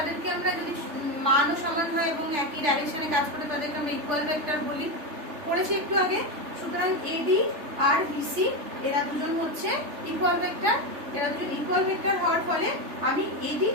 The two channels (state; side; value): late; left; 3.4 ms